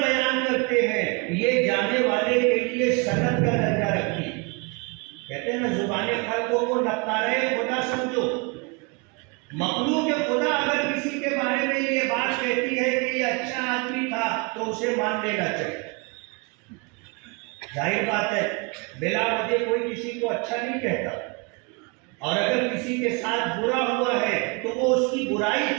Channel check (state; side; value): quieter; left; 30.5 dB